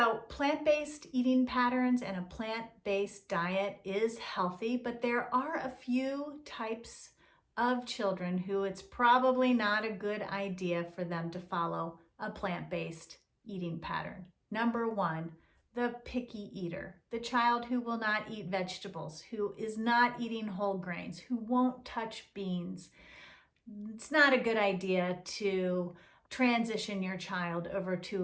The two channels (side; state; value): both; identical; correlation 1.00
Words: plant-based eating patterns and a plant-based diet is healthy, but there are a few types of children who it's probably not a good idea for them to follow a plant-based eating pattern. #1, the picky eater, the child who will not eat vegetables, who is not eating whole grains, who won't touch beans. It's not a good idea to transition your child over